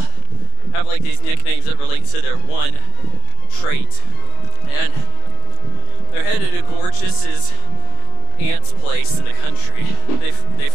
have like these nicknames that relate to their one trait. And they're headed to Gorgeous's aunt's place in the country. They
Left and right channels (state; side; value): late; right; 28 ms